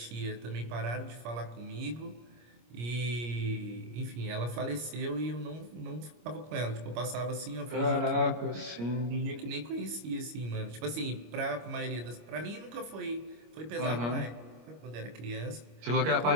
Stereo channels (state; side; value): late; left; 25 ms